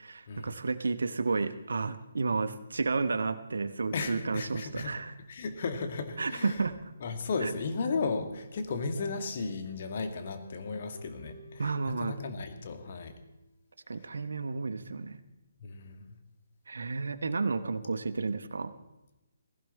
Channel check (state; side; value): inverted; both; correlation -0.84